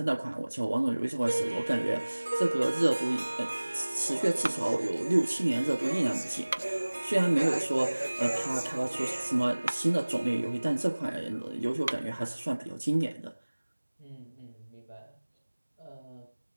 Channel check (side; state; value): both; inverted; correlation -1.00